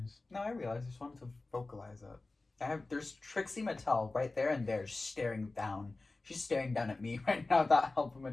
No, I realized. I just wanted to vocalize it. There's Trixie Mattel right there and there staring down. She's staring down at me right now. That help him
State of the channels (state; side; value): quieter; right; 3.3 dB